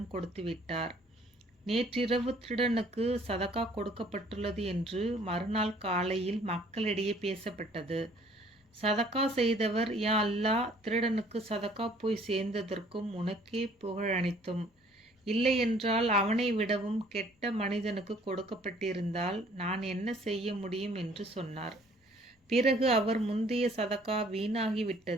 கொடுத்துவிட்டார். நேற்றிரவு திருடனுக்கு சதகா கொடுக்கப்பட்டுள்ளது என்று மறுநாள் காலையில் மக்களிடையே பேசப்பட்டது. சதகா செய்தவர், யா அல்லாஹ், திருடனுக்கு சதகா போய் சேர்ந்ததற்கும் உனக்கே புகழ் அனைத்தும். இல்லையென்றால் அவனை விடவும் கெட்ட மனிதனுக்கு கொடுக்கப்பட்டிருந்தால் நான் என்ன செய்ய முடியும் என்று சொன்னார். பிறகு அவர் முந்தைய சதகா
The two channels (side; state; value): both; normal; correlation 0.57